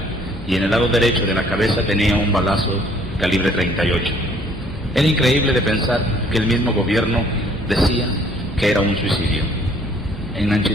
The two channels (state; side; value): normal; both; correlation 0.60